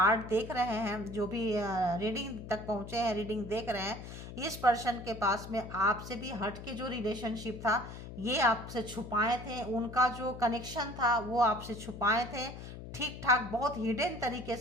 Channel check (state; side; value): noise; left; hum, 11 dB below the sound